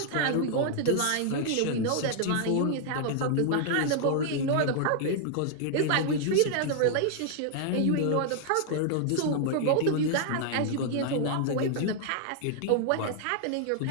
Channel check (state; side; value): different; both; correlation -0.01